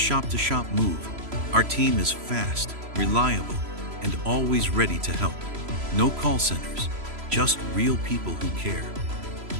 move, our team is fast, reliable, and always ready to help. No call centers, just real people who care.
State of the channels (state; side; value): late; left; 3.0 ms